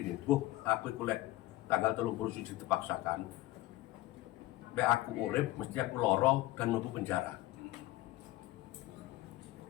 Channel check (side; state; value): right; quieter; 17.2 dB